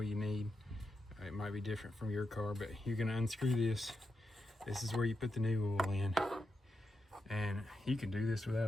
you need. It might be different from your car, but you're gonna unscrew this. This is where you put the new oil in. And you can do this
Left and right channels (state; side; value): normal; both; correlation 0.86